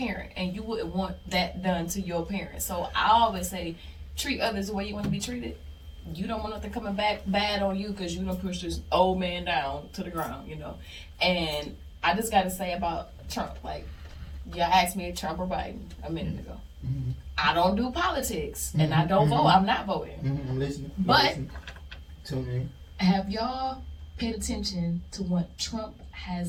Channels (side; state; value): both; identical; correlation 1.00